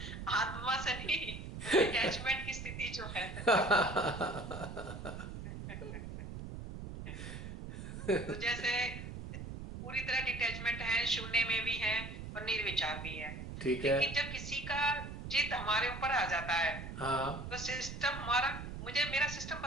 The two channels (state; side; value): noise; right; rumble, 8 dB below the sound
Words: से नहीं, डिटैचमेंट की स्थिति जो है। तो जैसे पूरी तरह डिटैचमेंट है, शून्य में भी है और निर्विचार भी है। ठीक है। लेकिन जब किसी का जिद हमारे ऊपर आ जाता है, हाँ। तो सिस्टम हमारा, मेरा सिस्टम